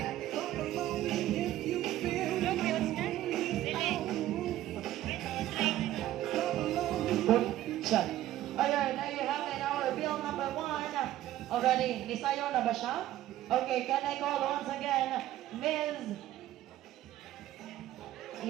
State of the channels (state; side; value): quieter; left; 13.9 dB